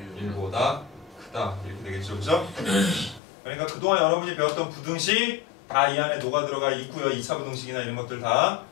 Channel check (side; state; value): right; drops out; at 3.2 s